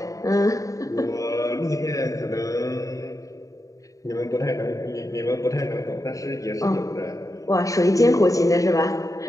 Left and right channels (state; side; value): late; right; 0.16 ms